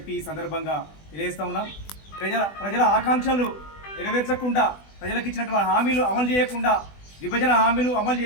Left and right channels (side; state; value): right; late; 20 ms